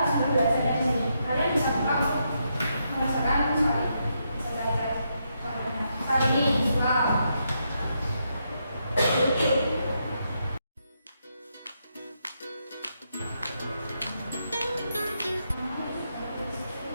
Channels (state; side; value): inverted; both; correlation -0.81